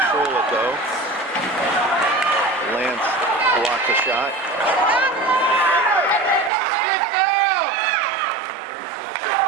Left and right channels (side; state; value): left; drops out; at 6.5 s